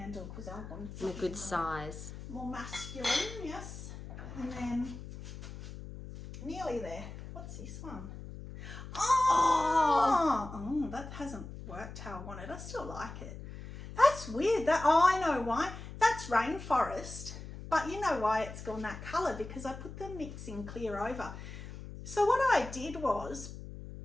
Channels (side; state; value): left; noise; hum, 11 dB below the sound